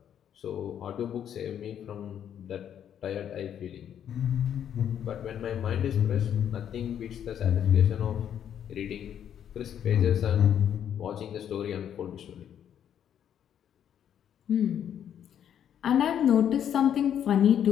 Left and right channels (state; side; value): quieter; right; 9.4 dB